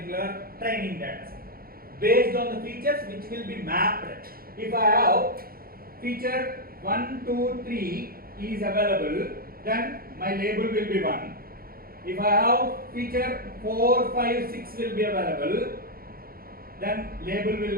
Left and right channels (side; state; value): left; late; 0.43 ms